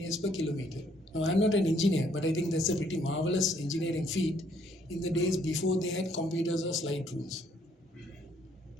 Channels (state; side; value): normal; both; correlation 0.66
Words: per kilometer. Now, I'm not an engineer, but I think that's a pretty marvelous engineering feat in the days before they had computers or slide rules.